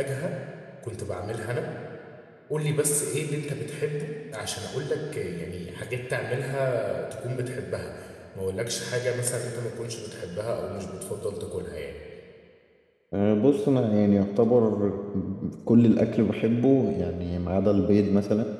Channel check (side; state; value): both; identical; correlation 1.00